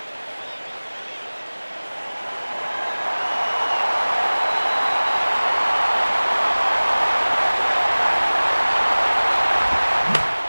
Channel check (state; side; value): inverted; both; correlation -1.00